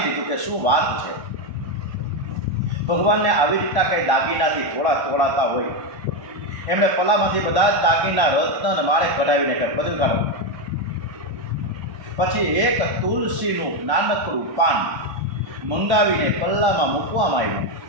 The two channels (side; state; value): left; late; 1.1 ms